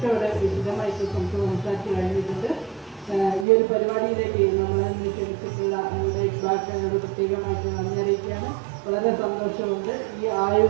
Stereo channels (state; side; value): drops out; left; at 3.5 s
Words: ഇവിടെ വിശദമായിട്ട് സംസാരിച്ച് കഴിഞ്ഞിട്ടുണ്ട്. ഈ ഒരു പരിപാടിയിലേക്ക് നമ്മളെ ക്ഷണിച്ചിട്ടുള്ള നമ്മുടെ ഇക്ബാലിനോട് പ്രത്യേകമായിട്ട് നന്ദി അറിയിക്കുകയാണ്. വളരെ സന്തോഷമുണ്ട്. ഈ